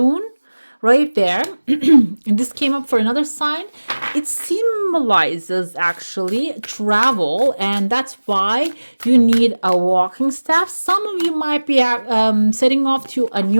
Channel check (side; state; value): both; inverted; correlation -1.00